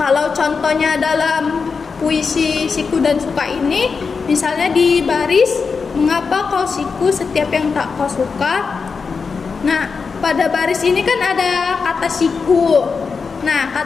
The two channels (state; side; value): quieter; right; 5.1 dB